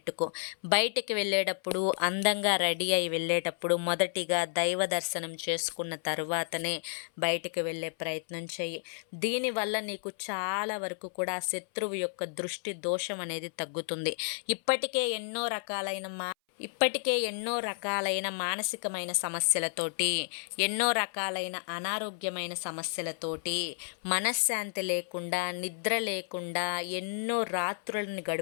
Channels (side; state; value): right; silent; 57 dB below the other